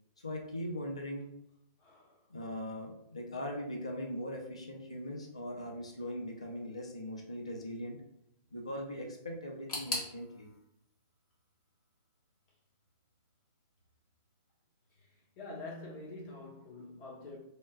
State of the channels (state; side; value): inverted; both; correlation -0.50